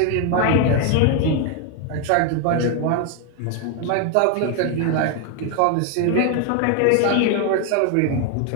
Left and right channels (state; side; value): different; both; correlation 0.01